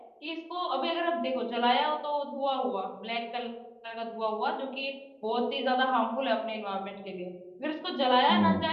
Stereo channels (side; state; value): both; identical; correlation 1.00